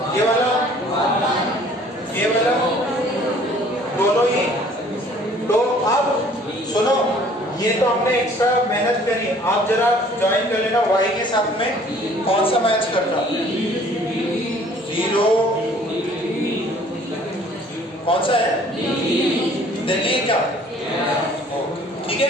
ये वाला दोनों ही। तो अब सुनो, ये तो हमने एक्स्ट्रा मेहनत करी, आप जरा ज्वाइन कर लेना y के साथ में कौन सा मैच करना, 0 कौन सा है दिल्ली क्या, ठीक है।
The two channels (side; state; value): both; normal; correlation 0.55